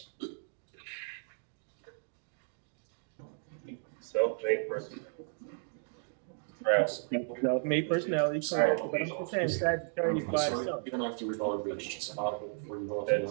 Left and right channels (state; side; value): silent; left; 55 dB below the other